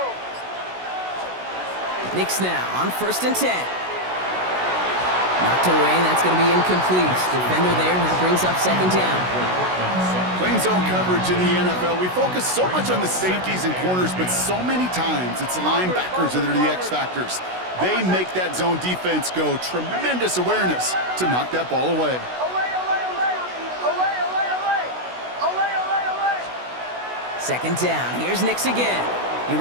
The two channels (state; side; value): late; left; 16 ms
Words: Nix now on 1st and 10. Knocked away, that's going to be incomplete. Defender there who brings up 2nd down. Playing zone coverage in the NFL, we focus so much on the safeties and corners, but so many times it's the linebackers that are the X factors. They make that zone defense go. Tremendous awareness to knock that ball away. Second down, here's Nix again. He